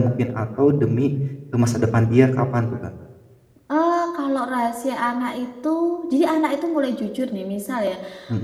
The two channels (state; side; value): identical; both; correlation 1.00